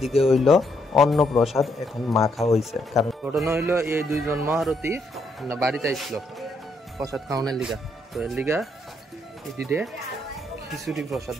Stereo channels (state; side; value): normal; both; correlation 0.75